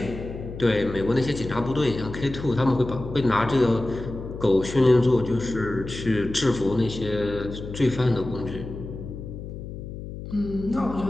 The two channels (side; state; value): left; noise; hum, 10 dB below the sound